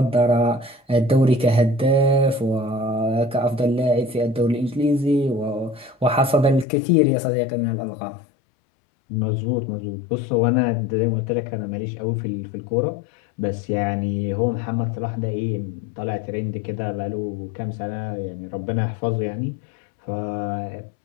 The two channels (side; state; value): right; drops out; at 6.7 s